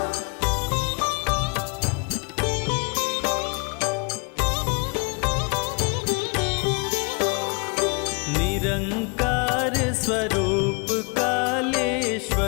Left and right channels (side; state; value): right; quieter; 33.0 dB